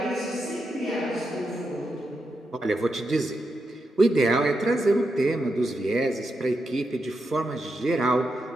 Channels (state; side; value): normal; both; correlation 0.85